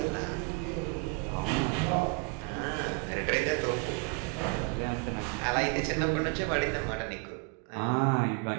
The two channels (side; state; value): left; quieter; 30.5 dB